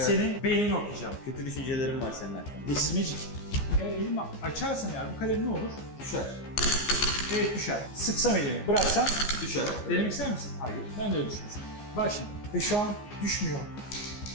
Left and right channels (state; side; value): late; right; 15 ms